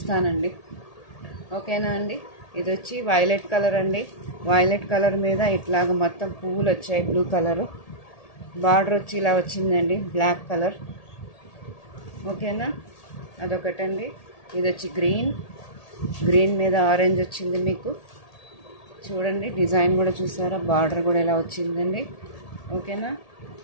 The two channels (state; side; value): late; right; 1.8 ms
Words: ఓకేనా అండి? ఇది వచ్చి వైలెట్ కలర్ అండి. వైలెట్ కలర్ మీద ఇట్లాగ మొత్తం పువ్వులు వచ్చాయి. బ్లూ కలరు బార్డర్ వచ్చి ఇలా వచ్చిందండి, బ్లాక్ కలర్. ఓకేనా? అదొకటండి. ఇది వచ్చి గ్రీన్ మీద ఆరెంజ్ వచ్చింది. మీకు చూడండి, డిజైన్ కూడా చూసారా? బార్డర్ కూడా ఇలా వచ్చిందండి. ఓకేనా?